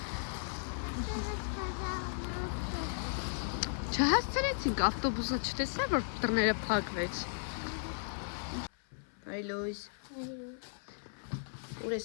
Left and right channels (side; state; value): right; silent; 54 dB below the other